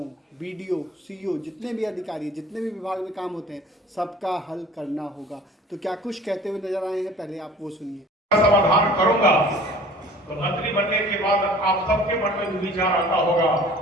बीडीओ, सीईओ, जितने भी अधिकारी, जितने भी विभाग में काम होते हैं, सबका हल करना होगा। तो क्या कुछ कहते हुए नजर आए हैं, पहले आप वो सुनिए। समाधान करूंगा तो मंत्री बनने के बाद आप सबके मन में विचार आता होगा,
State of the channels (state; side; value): normal; both; correlation 0.47